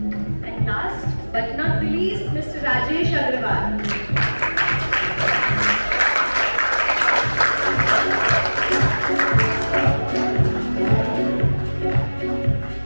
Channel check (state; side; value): inverted; both; correlation -1.00